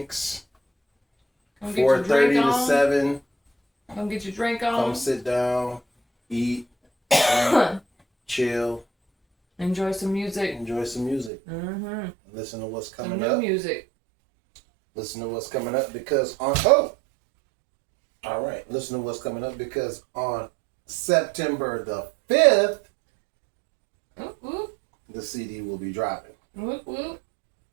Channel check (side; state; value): left; drops out; at 11.3 s